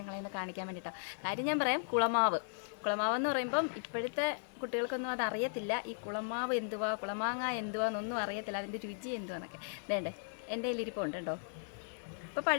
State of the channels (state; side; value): silent; right; digital silence